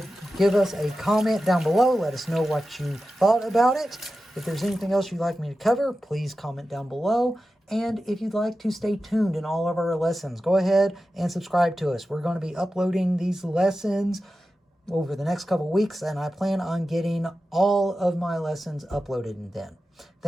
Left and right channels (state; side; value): normal; both; correlation 0.93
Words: Give us a comment down below. Let us know what you thought about it. If there's anything else you'd like me to cover, please comment down below. And if you'd like to stay tuned in all of our lessons, go ahead and subscribe to us. We're going to be uploading these lessons over the next couple weeks, and I plan on getting all of my lessons uploaded then.